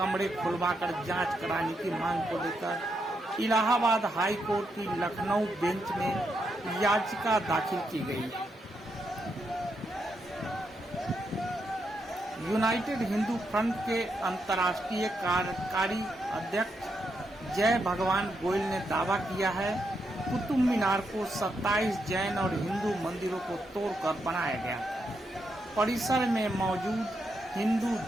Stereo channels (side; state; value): both; normal; correlation 0.82